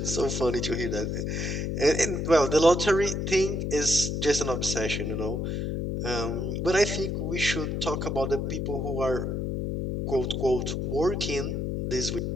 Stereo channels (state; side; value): noise; left; hum, 1 dB below the sound